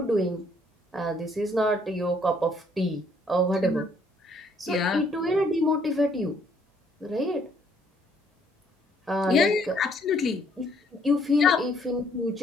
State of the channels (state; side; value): normal; both; correlation 0.66